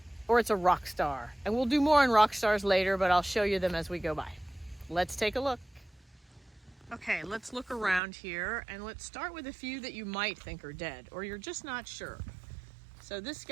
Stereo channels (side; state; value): left; drops out; at 8.0 s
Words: Or it's a rock star? And we'll do more on rock stars later, but I'll show you them as we go by. Let's take a look. Okay, let's look around here and let's start with a few that you might think are dead or you're just not sure. So this